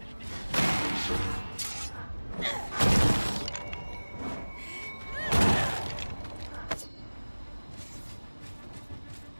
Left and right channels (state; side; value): inverted; both; correlation -1.00